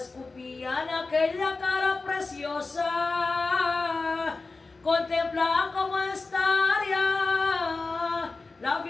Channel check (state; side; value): quieter; right; 3.7 dB